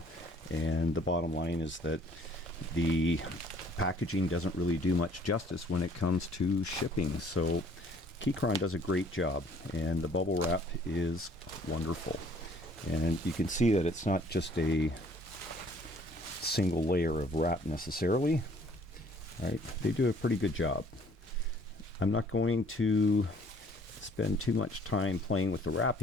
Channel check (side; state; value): both; normal; correlation 0.58